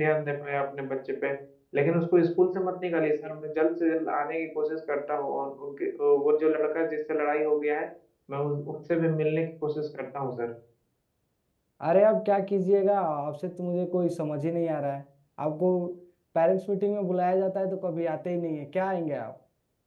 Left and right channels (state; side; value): identical; both; correlation 1.00